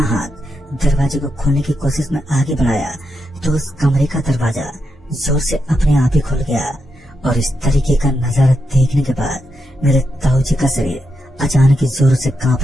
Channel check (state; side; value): normal; both; correlation 0.84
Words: हाथ दरवाजे को खोलने की कोशिश में आगे बढ़ाया तो उस कमरे का दरवाजा जोर से अपने आप ही खुल गया। और इस तरीके का नजारा देखने के बाद मेरे ताऊजी का शरीर अचानक ही जोर से